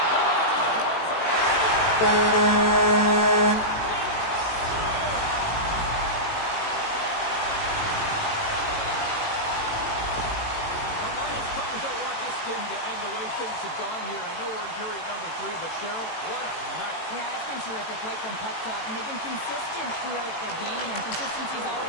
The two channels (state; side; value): late; right; 18 ms